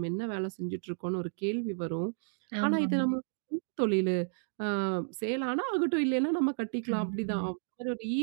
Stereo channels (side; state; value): left; silent; digital silence